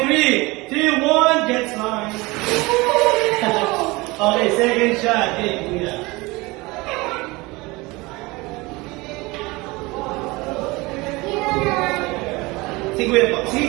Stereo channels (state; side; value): quieter; left; 23.0 dB